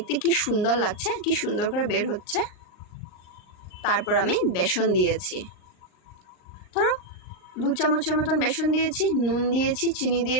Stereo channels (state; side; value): late; right; 38 ms